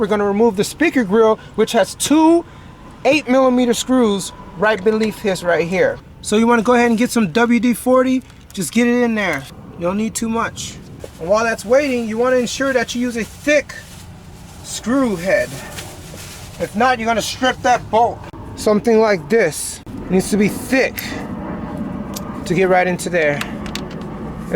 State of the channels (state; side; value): identical; both; correlation 1.00